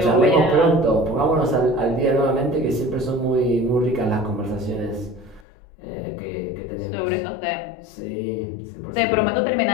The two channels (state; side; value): drops out; right; at 5.5 s